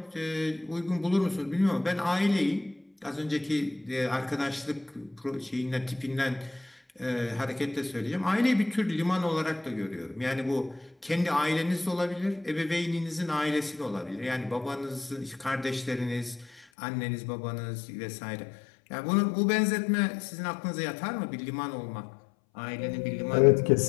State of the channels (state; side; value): drops out; right; at 16.6 s